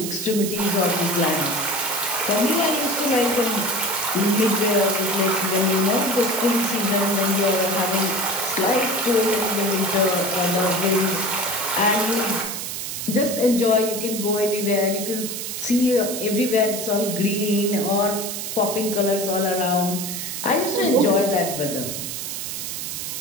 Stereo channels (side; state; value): right; noise; hiss, 5 dB below the sound